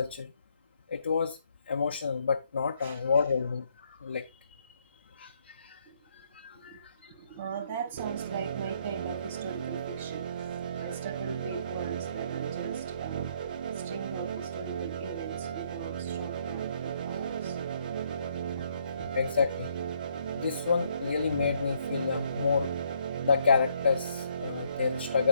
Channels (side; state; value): both; inverted; correlation -0.70